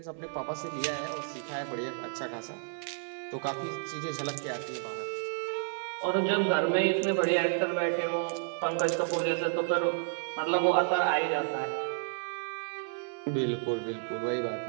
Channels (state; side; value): silent; left; 57 dB below the other